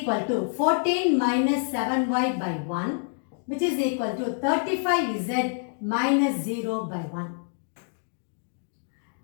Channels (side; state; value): right; silent; digital silence